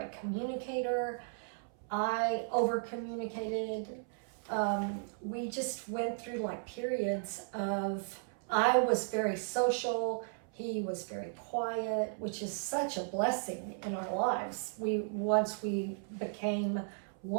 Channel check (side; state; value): left; silent; 54 dB below the other